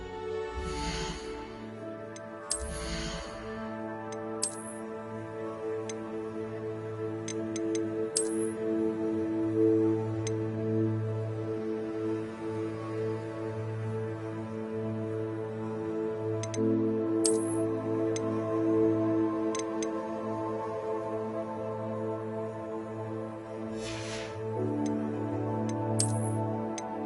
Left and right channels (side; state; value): both; identical; correlation 1.00